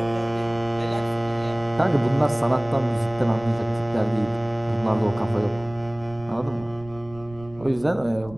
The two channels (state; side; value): noise; right; rumble, 19 dB below the sound